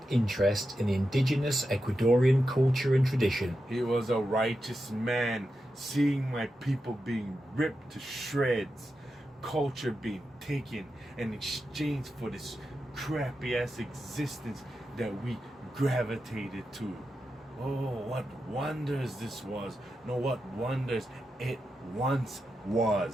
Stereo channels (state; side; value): normal; both; correlation 0.89